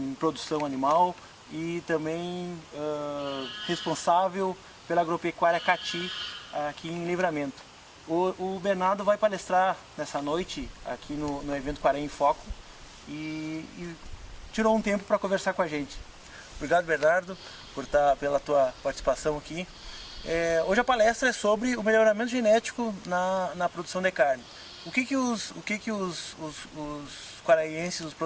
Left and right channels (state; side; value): identical; both; correlation 1.00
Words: produção animal e também responsável pela agropecuária Cati aqui em Livramento. O Bernardo vai palestrar nessa noite aqui no evento Quaraí em Foco e tirou um tempo para conversar com a gente. Obrigado, Bernardo, pela tua participação aqui. Hoje a palestra é sobre o melhoramento genético na produção de carne. O que os quaraenses, os